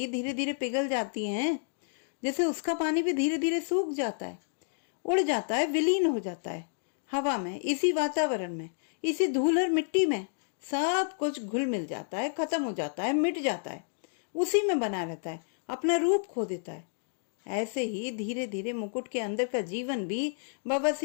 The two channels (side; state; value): right; silent; digital silence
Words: धीरे धीरे पिघल जाती हैं, जैसे उसका पानी भी धीरे धीरे सूख जाता है, उड़ जाता है, विलीन हो जाता है हवा में, इसी वातावरण में, इसी धूल और मिट्टी में। सब कुछ घुल मिल जाता है, खत्म हो जाता है, मिट जाता है, उसी में बना रहता है, अपना रूप खो देता है। ऐसे ही धीरे धीरे मुकुट के अंदर का जीवन भी